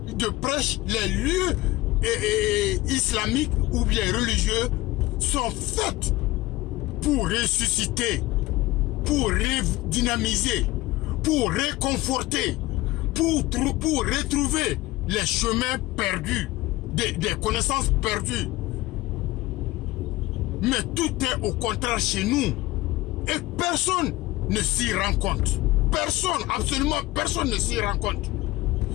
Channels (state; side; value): quieter; right; 18.6 dB